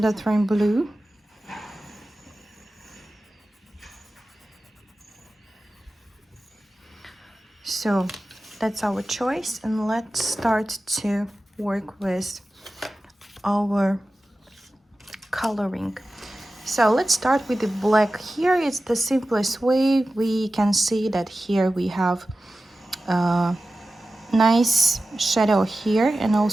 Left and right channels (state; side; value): normal; both; correlation 0.95